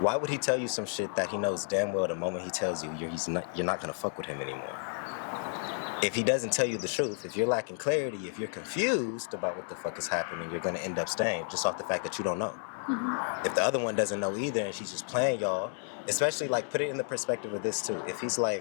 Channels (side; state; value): right; silent; 57 dB below the other